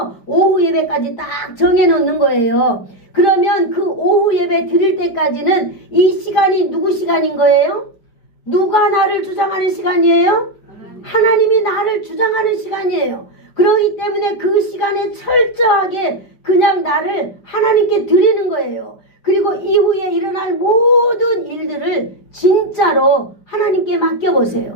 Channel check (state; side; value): late; right; 5.1 ms